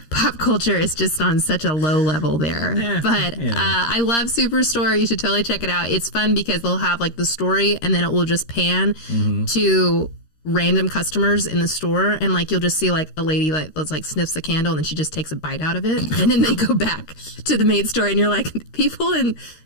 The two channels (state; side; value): late; right; 13 ms